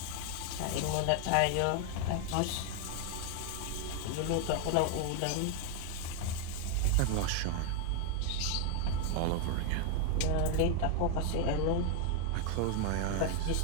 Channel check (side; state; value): both; different; correlation 0.00